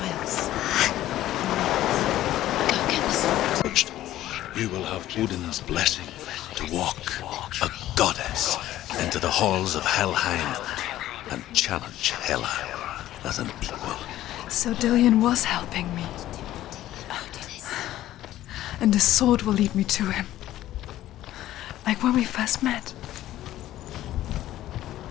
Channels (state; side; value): quieter; right; 14.0 dB